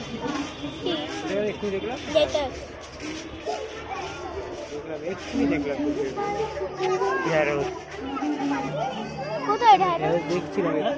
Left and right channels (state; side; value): identical; both; correlation 1.00